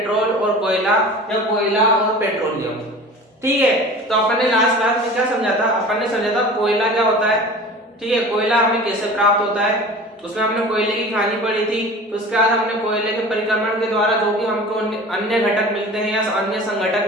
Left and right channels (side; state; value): both; normal; correlation 0.39